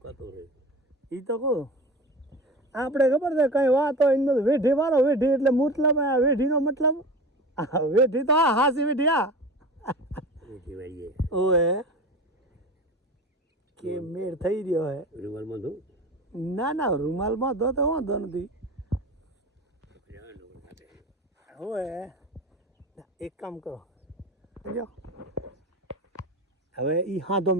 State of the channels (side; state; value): both; normal; correlation 0.32